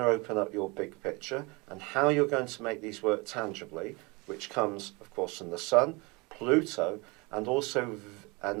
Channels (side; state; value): left; quieter; 27.1 dB